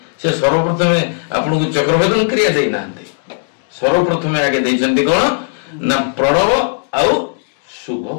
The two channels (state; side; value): silent; right; digital silence